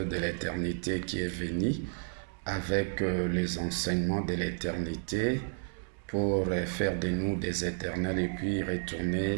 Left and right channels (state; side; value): silent; left; 57 dB below the other